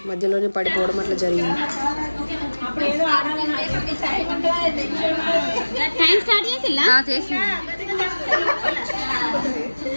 మధ్యలోనే పడిపోవడం అట్లా జరిగింది.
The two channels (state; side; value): inverted; both; correlation -1.00